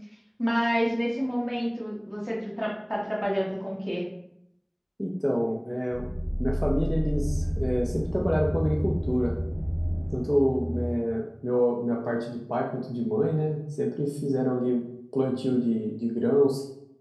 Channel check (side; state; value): both; identical; correlation 1.00